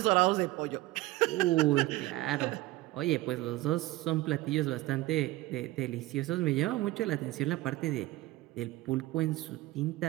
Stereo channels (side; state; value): left; quieter; 18.1 dB